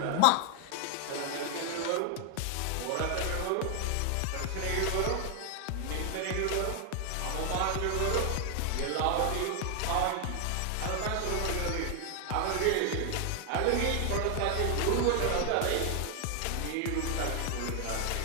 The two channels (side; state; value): both; different; correlation 0.00